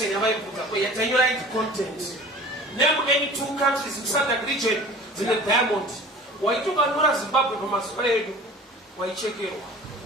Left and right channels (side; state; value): both; normal; correlation 0.42